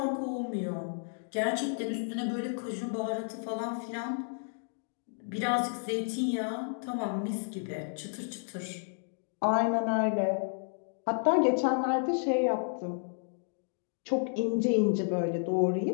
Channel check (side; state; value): right; silent; digital silence